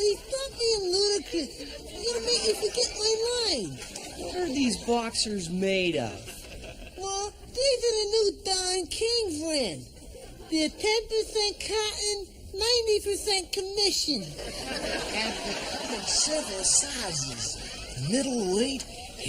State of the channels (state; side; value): identical; both; correlation 1.00